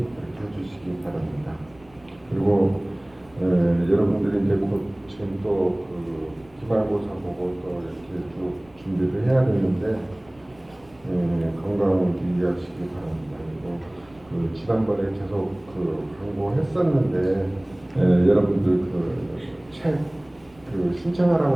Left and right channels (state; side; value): noise; right; rumble, 28 dB below the sound